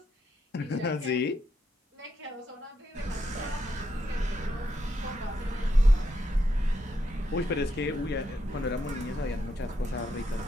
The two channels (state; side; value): normal; both; correlation 0.80